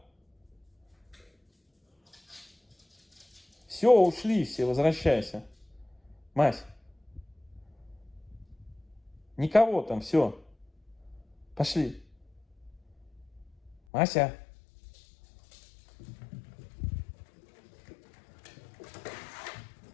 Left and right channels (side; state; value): right; drops out; at 13.8 s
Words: Все, ушли все, возвращайся. Мась. Никого там, все. Пошли. Мася.